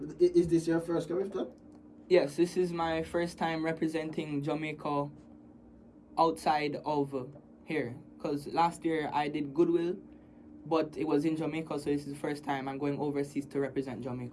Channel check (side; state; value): both; identical; correlation 1.00